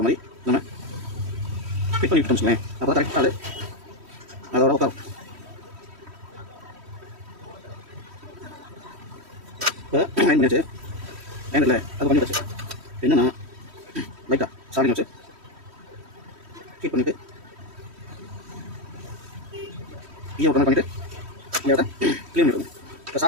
மாதிரி நம்ம ஃபிட் பண்ணி விட்டோம்னு சொல்லுவேன். அப்போ தான் கரெக்டாக அதோட உட்காரும். இப்போ அயன் பண்ணியாச்சு. அயன் இல்லை அது பண்ணியாச்சு. என்னென்னா லைட்டாக சார்ஜிங் வச்சு ஃபிட் பண்ணிவிட்டு ஈயம் ஒரு பண்ணிவிட்டு இந்த இடத்த க்ளீன் பண்ணிடுங்க. இப்போ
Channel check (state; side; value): late; left; 3.1 ms